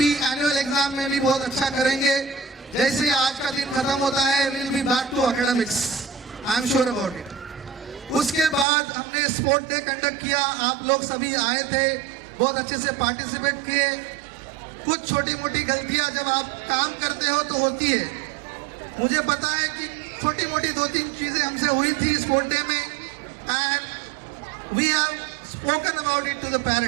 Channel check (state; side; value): drops out; left; at 8.7 s